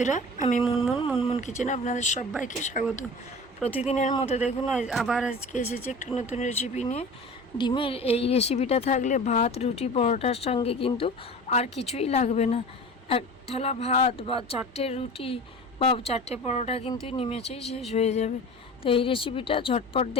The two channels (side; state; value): both; normal; correlation 0.37